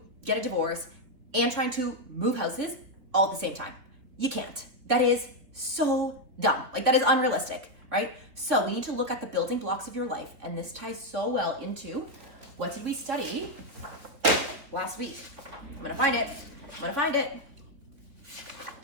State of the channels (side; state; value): left; late; 3.8 ms